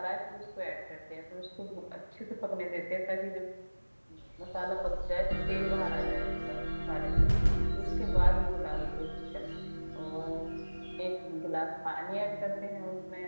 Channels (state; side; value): inverted; both; correlation -1.00